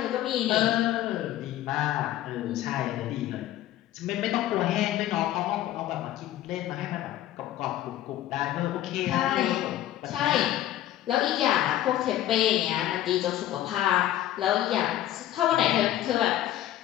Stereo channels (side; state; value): right; quieter; 13.2 dB